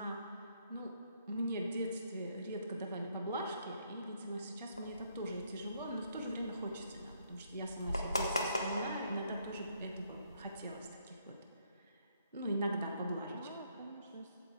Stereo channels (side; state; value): both; inverted; correlation -0.71